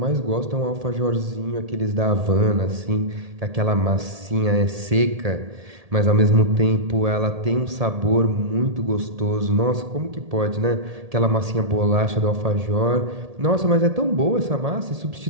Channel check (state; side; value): late; left; 1.8 ms